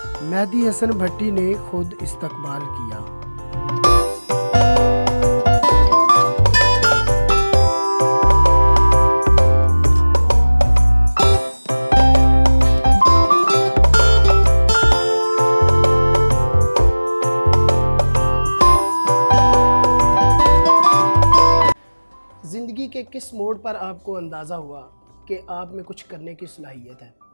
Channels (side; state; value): both; inverted; correlation -1.00